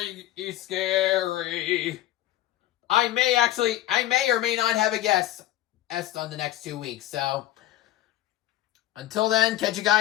scary. I may or may not have a guest on the next 2 weeks. So, until then, catch you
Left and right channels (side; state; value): right; quieter; 14.1 dB